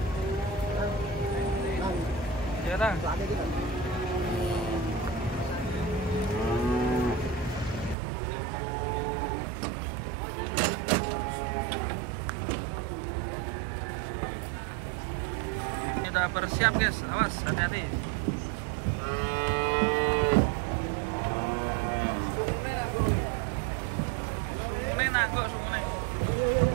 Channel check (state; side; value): drops out; left; at 8.0 s